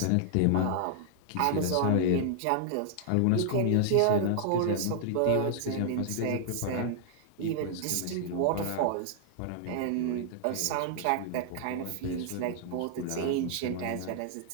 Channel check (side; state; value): both; different; correlation -0.01